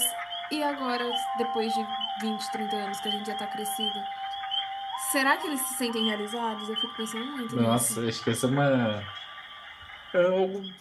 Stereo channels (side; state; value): both; identical; correlation 1.00